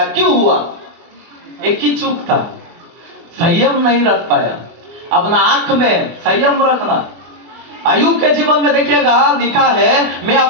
क्यों हुआ? एक ही चूक था, संयम नहीं रख पाया। अपना आंख में संयम रखना। अय्यूब के जीवन में देखिएगा, लिखा है मैं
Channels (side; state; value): left; late; 24 ms